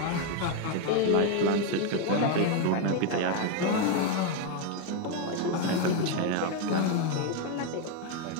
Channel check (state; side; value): different; both; correlation 0.02